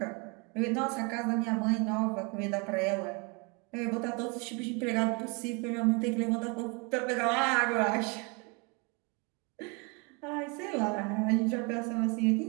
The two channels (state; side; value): quieter; left; 31.1 dB